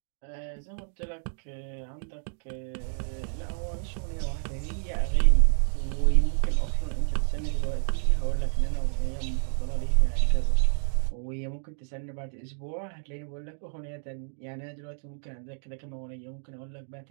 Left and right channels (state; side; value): silent; left; 59 dB below the other